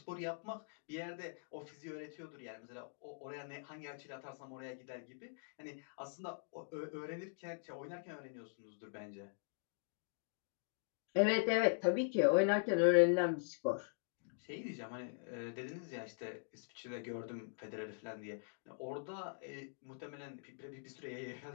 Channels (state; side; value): silent; right; digital silence